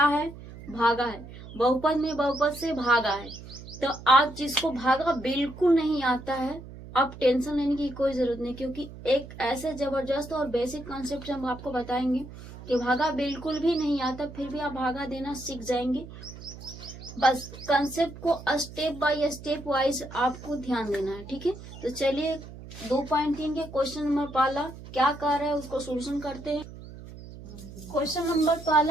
है, भागा है। बहुपद में बहुपद से भागा है। तो आज जिसको भागा बिल्कुल नहीं आता है, आप टेंशन लेने की कोई जरूरत नहीं, क्योंकि एक ऐसे जबरदस्त और बेसिक कॉन्सेप्ट हम आपको बताएंगे कि भागा बिल्कुल भी नहीं आता, फिर भी आप भागा देना सीख जाएंगे। बस कंसेप्ट को स्टेप बाय स्टेप वाइज आपको ध्यान देना है, ठीक है। तो चलिए 2.3 के क्वेश्चन नंबर पहला क्या कर रहा है उसको सोल्यूशन करते हैं। क्वेश्चन नंबर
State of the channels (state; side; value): noise; right; hum, 15 dB below the sound